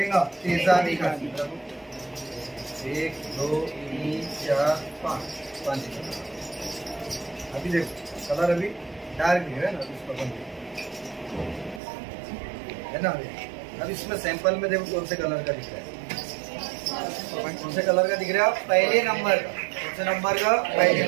तेजाबी खासियत। 1 2 3 4 5। अभी देखो कलर अभी डार्क भी है ना, इसको है ना। अब इसमें सैंपल में देखो कौन से कलर का दिख रहा है। कौन से कलर का दिख रहा है? पहले नंबर का। कौन से नंबर का? पहले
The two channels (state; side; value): drops out; left; at 11.8 s